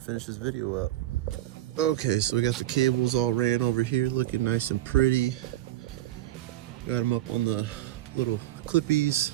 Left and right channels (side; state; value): left; quieter; 14.3 dB